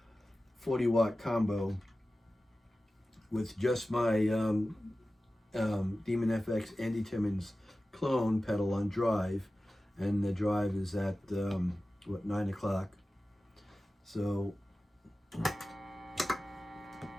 40-watt combo with just my Demon FX Andy Timmons clone pedal on drive, and the drive is at 9 o'clock. So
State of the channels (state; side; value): normal; both; correlation 0.95